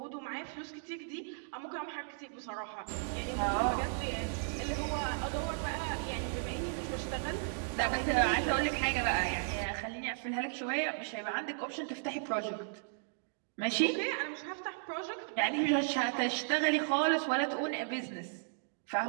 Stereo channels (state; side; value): silent; left; digital silence